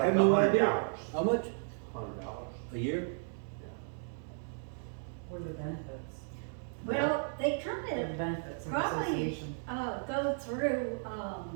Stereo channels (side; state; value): left; silent; digital silence